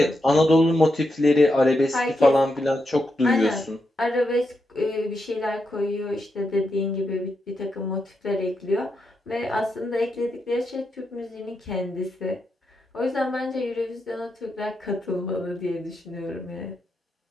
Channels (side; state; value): both; normal; correlation 0.84